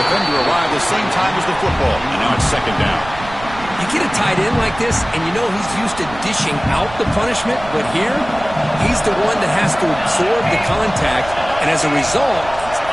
defender arrived the same time as the football. And now it's second down. You get a tight end like this, and you know he's used to dishing out the punishment. But here, he's the one that has to absorb the contact. And as a result, he's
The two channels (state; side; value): noise; right; rumble, 15 dB below the sound